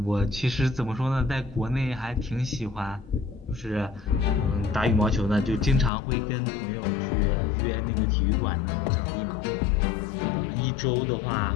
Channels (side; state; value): right; drops out; at 5.9 s